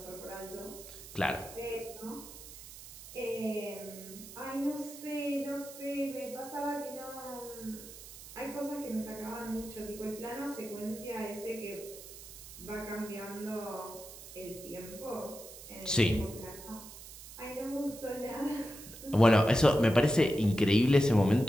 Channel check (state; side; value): noise; right; hiss, 15 dB below the sound